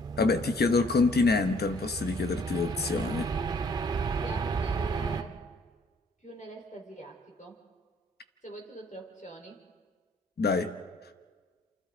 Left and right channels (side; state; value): both; normal; correlation 0.62